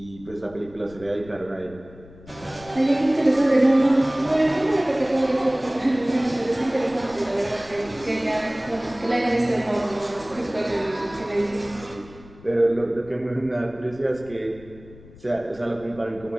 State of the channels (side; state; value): left; noise; rumble, 21 dB below the sound